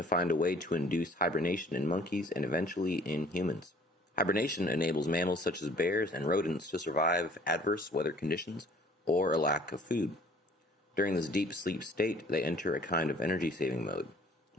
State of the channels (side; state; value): both; normal; correlation 0.55